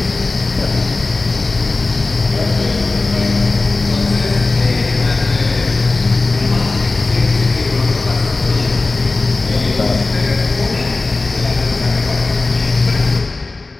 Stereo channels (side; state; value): right; quieter; 3.4 dB